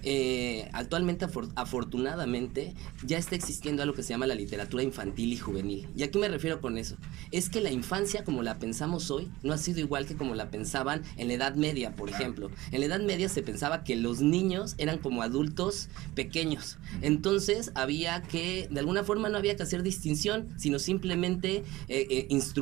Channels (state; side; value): quieter; left; 18.5 dB